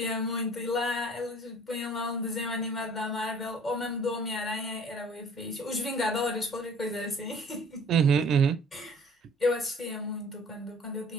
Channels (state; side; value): normal; both; correlation 0.51